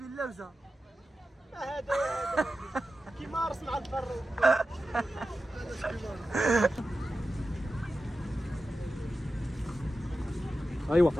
اللوزه. هذا كيما رسم على البر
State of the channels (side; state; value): both; normal; correlation 0.92